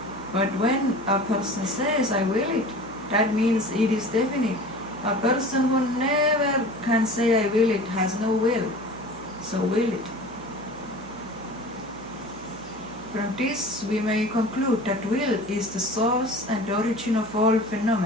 But when a person says, I will it, that means it is definite. A person who never can say I will it has no will, so will it. From this we may conclude that will is the source and origin of all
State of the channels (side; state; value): right; noise; hum, 21 dB below the sound